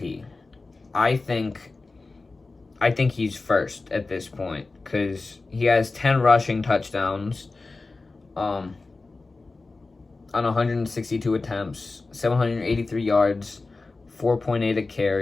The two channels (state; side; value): quieter; right; 3.6 dB